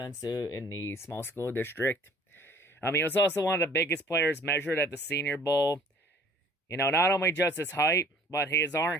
in the small school district. He was also one of the biggest players measured at the Senior Bowl. Not only just his height, but he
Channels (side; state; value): both; normal; correlation 0.54